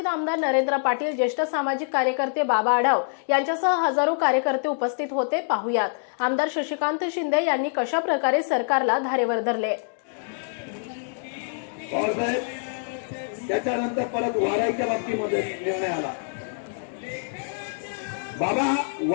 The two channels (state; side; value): silent; right; digital silence